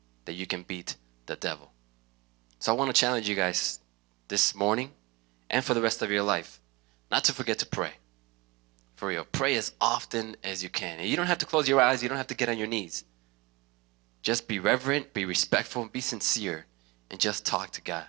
that you can beat the devil. So I want to challenge you guys this morning and for the rest of your life not to forget to pray. For real. Pray as often as you can. And you don't have to close your eyes. You don't have to get on your knees. Just be reverent, be respectful, be sincere, and just talk to God.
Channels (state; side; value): quieter; left; 24.2 dB